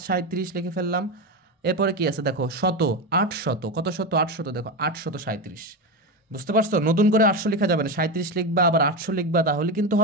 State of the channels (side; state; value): both; normal; correlation 0.16